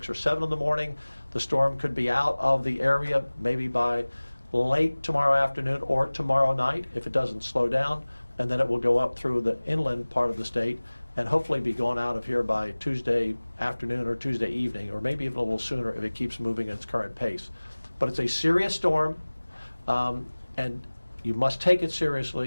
or 7 in the morning. The storm could be out of the area maybe by late tomorrow afternoon or tomorrow night if it doesn't slow down, and then it will go up through the inland part of the state and hopefully be gone out of here by Tuesday afternoon or Tuesday evening, or maybe even a little sooner if it keeps moving at its current pace. But it's a serious storm, and you must take it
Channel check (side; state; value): both; inverted; correlation -1.00